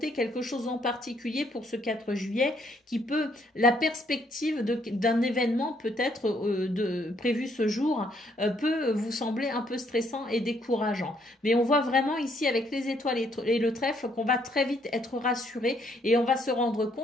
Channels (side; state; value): both; normal; correlation 0.70